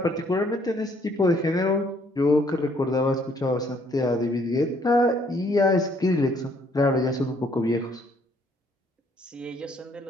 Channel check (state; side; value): normal; both; correlation 0.65